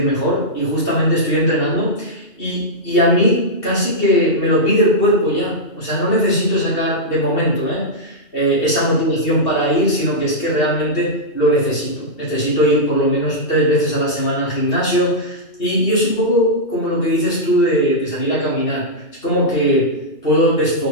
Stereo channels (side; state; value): right; late; 2.7 ms